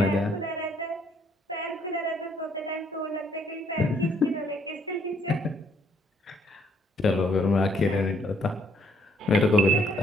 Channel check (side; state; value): both; normal; correlation 0.67